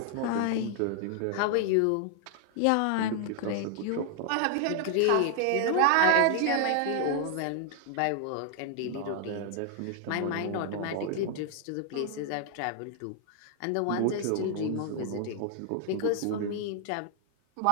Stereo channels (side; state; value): both; different; correlation 0.00